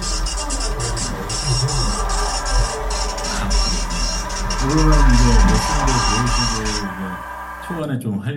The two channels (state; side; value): identical; both; correlation 1.00